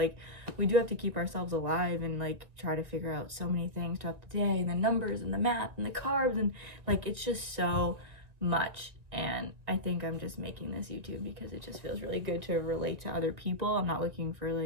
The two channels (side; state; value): left; late; 1.7 ms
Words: we do have to keep ourselves alive and like try to figure out so many things throughout the day, and the numbers and the math and the carbs, and like, it's just so much. And I think I'm just making this YouTube because it just feels really good to relate to other people. I'm not looking for